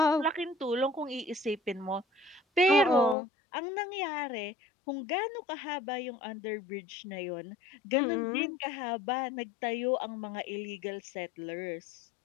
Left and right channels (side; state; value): right; drops out; at 3.2 s